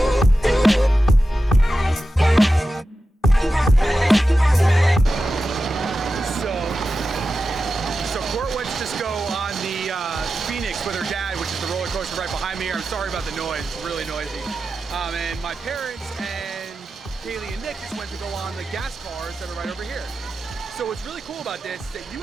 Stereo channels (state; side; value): normal; both; correlation 0.92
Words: So Court went to just go on the Phoenix with her dad, which is the roller coaster right behind me here. I'm sorry about the noise, it's really noisy. And my parents and Kaylee and Nick just went to go on the gas cars that are right over here. So what's really cool about this is that you